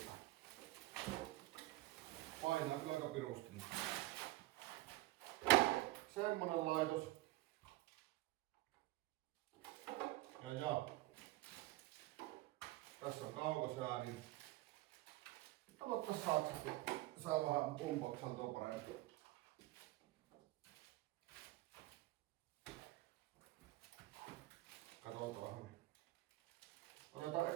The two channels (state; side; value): quieter; left; 18.3 dB